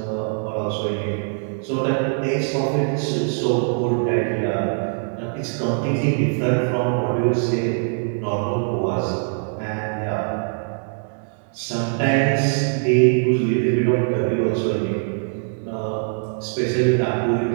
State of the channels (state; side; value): silent; left; 64 dB below the other